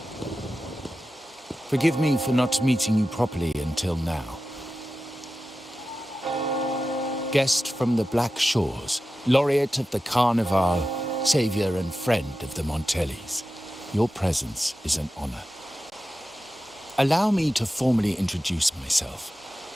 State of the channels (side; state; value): both; normal; correlation 0.93